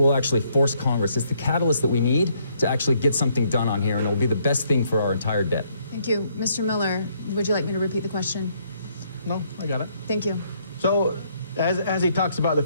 actually force Congress. It's the catalyst that we need to actually get something done on here, and it will be the best thing for our entire debt. Thank you. Mr. Miller, would you like me to repeat the question? No, I got it. Thank you. So as he talks about the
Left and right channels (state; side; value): inverted; both; correlation -0.69